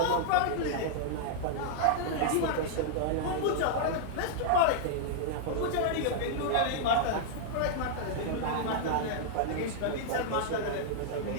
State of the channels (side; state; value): both; different; correlation -0.01